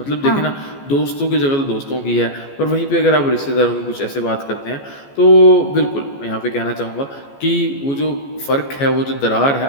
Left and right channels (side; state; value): right; late; 14 ms